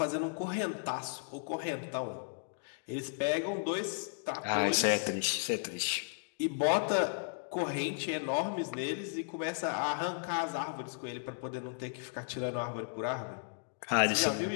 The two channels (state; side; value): silent; right; digital silence